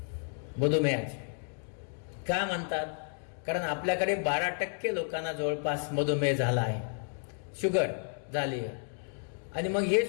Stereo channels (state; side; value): silent; right; 57 dB below the other